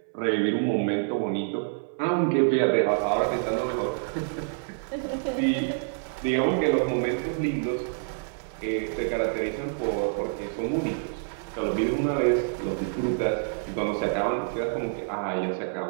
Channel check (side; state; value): left; silent; 57 dB below the other